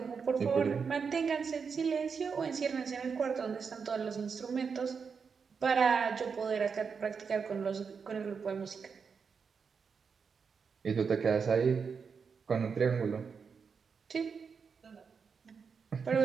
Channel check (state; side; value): quieter; left; 5.8 dB